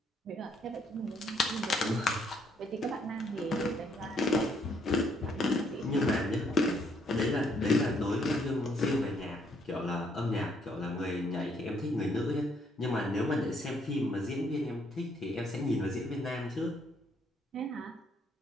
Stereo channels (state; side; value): normal; both; correlation 0.69